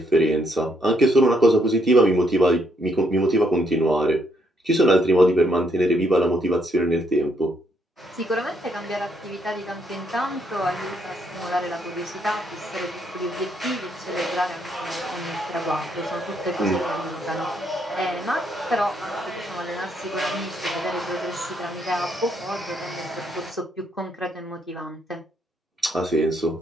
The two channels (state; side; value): normal; both; correlation 0.73